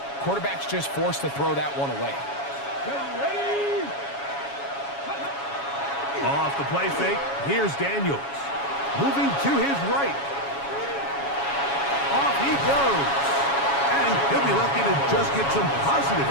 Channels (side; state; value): right; late; 7.2 ms